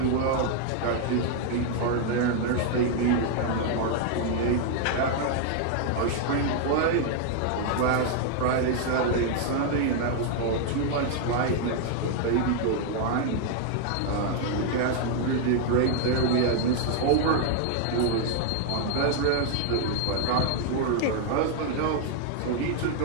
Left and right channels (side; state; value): both; different; correlation 0.00